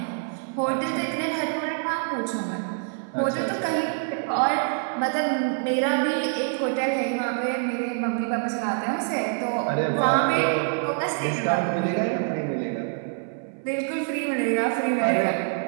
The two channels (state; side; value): silent; left; 61 dB below the other